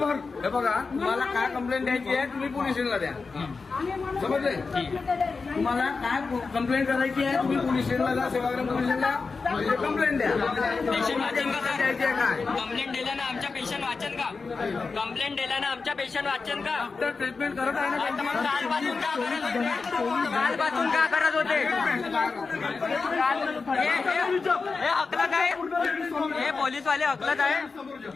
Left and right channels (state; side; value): quieter; right; 4.5 dB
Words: हे बघा, तुम्हाला काय कंप्लेंट द्यायची आहे तुम्ही पोलीस स्टेशनला द्या. समजले? तुम्हाला काय कंप्लेंट करायची आहे तुम्ही पोलीस स्टेशनला जा. सेवाग्राम पोलीस स्टेशनला कंप्लेंट द्या. द्यायची आहे काय? कंप्लेंट दिल्यानं आमच्या पेशंट वाचन का? कंप्लेंट दिल्यानं आमच्या पेशंट वाचन का? डॉक्टर ट्रीटमेंट करत आहे ना. मग कालपासून का करत होते? कालपासून का करत होते? हे हकलत आहे. हे पोलीसवाले हकलत आहे.